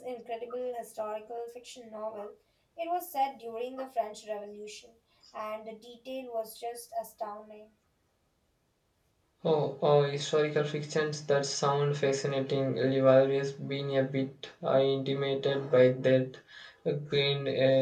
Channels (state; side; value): identical; both; correlation 1.00